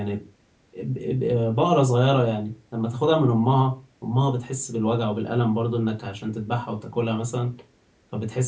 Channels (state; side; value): identical; both; correlation 1.00